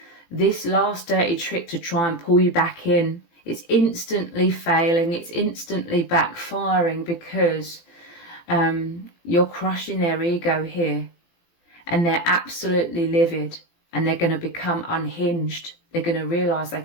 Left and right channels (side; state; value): right; late; 18 ms